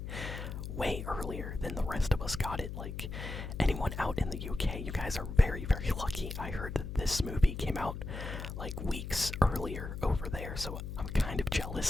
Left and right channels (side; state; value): left; noise; hum, 7 dB below the sound